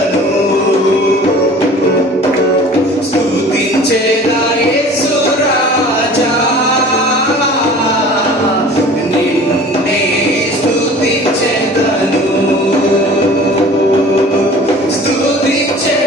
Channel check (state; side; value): normal; both; correlation 0.44